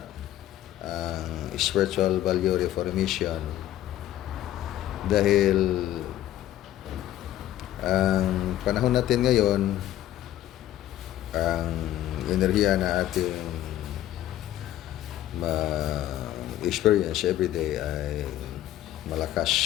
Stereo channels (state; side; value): quieter; right; 13.2 dB